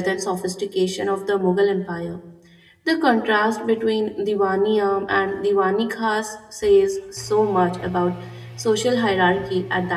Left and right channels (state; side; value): identical; both; correlation 1.00